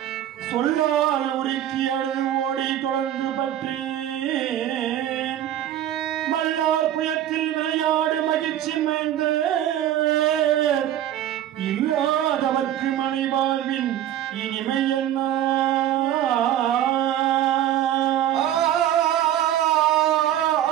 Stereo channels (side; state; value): left; quieter; 11.7 dB